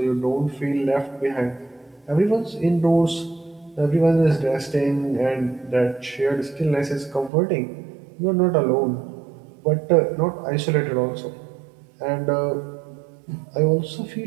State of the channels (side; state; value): left; drops out; at 7.3 s